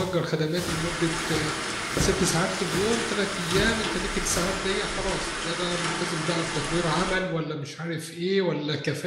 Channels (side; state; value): both; identical; correlation 1.00